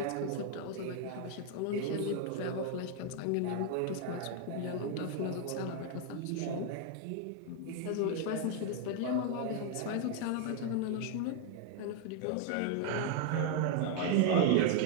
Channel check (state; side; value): different; both; correlation 0.00